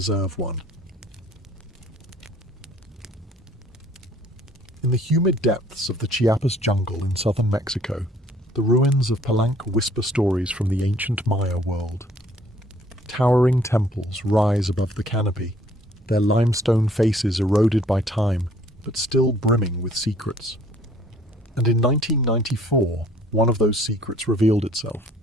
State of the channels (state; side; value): normal; both; correlation 0.59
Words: one. In the humid depths of the Chiapas jungle in southern Mexico, the ruins of Palenque whisper stories from the ancient Maya world. Towering temples rise above the canopy, their limestone faces eroded by time, but still brimming with secrets. And in 1994, one of those secrets revealed itself.